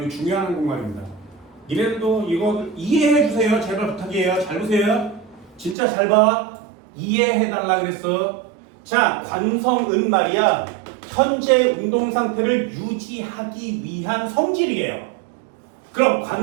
이 중요한 한국말입니다. 이래도 이거 이해해 주세요. 제발 부탁이에요. 잘 보세요. 진짜 잘 봐. 이해해달라 그랬어. 자, 관성은 말이야. 현재 운동 상태를 유지하기 위한 성질이에요. 그럼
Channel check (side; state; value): left; drops out; at 5.8 s